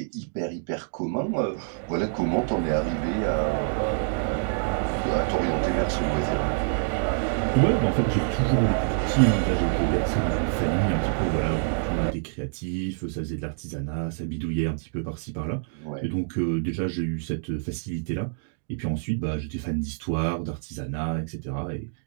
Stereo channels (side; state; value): left; silent; digital silence